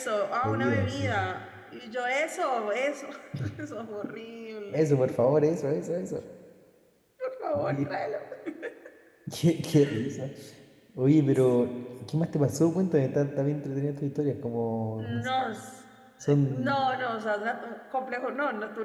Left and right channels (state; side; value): identical; both; correlation 1.00